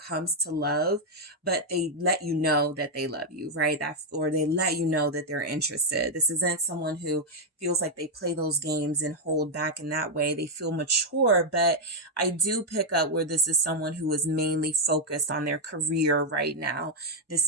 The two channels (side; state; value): both; normal; correlation 0.00